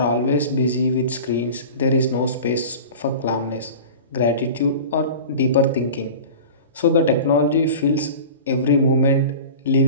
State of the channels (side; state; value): both; inverted; correlation -0.36